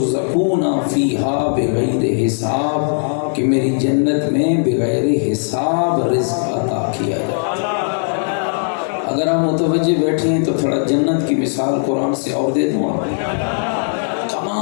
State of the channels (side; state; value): right; silent; 67 dB below the other